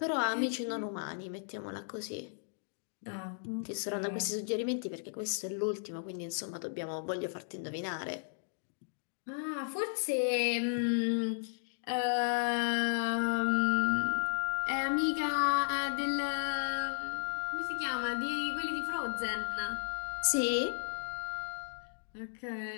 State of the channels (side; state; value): right; silent; digital silence